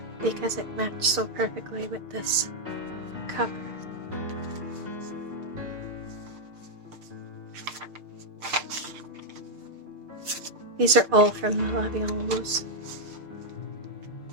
because it matched so perfectly with this cover. These are all from the La Vie en Rose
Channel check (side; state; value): left; late; 6.6 ms